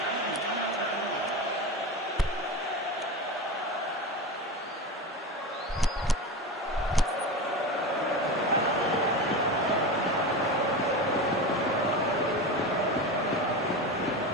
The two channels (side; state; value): both; normal; correlation 0.24